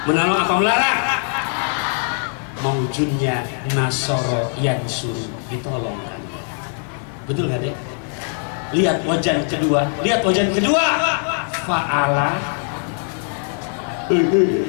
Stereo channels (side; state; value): right; silent; 55 dB below the other